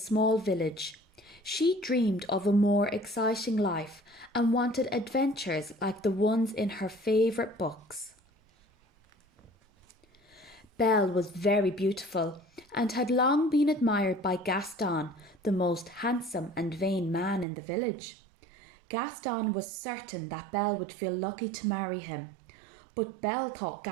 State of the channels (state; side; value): drops out; left; at 17.4 s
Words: village. She dreamed of a more exciting life and wanted adventures like the ones in her favourite books. Belle was very beautiful and had long been admired by Gaston, the most handsome and vain man in the village. Gaston was certain that Belle would feel lucky to marry him. But Belle thought